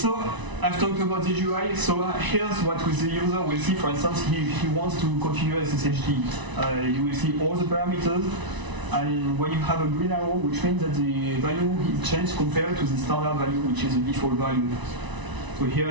I've talked about the GUI. So here's what the user will see. For instance, he wants to configure SSHD. You will see all the parameters. and when you have a green arrow, which means that the value is changed compared to the standard value, which is the default value. So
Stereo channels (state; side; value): late; left; 1.0 ms